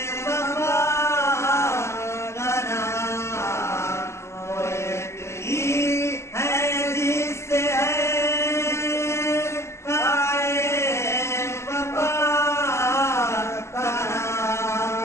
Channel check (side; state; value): right; late; 0.13 ms